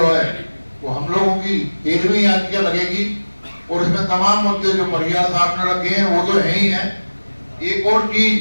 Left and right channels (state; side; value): inverted; both; correlation -1.00